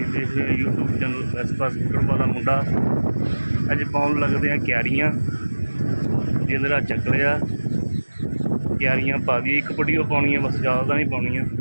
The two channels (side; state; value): both; inverted; correlation -1.00